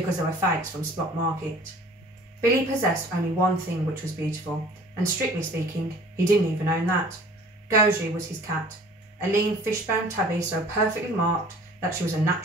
they were fakes from Spot Market. Billy possessed only one thing which was beautiful, and strictly speaking, he didn't even own that. Goji was his cat, a lean fishbone tabby so perfectly marked that she was a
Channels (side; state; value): both; normal; correlation 0.49